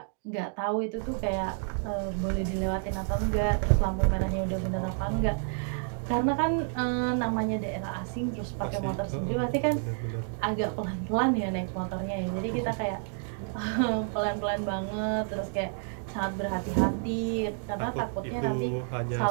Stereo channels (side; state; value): left; silent; 58 dB below the other